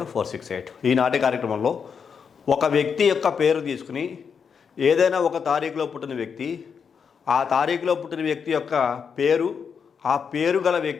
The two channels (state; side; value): quieter; right; 6.5 dB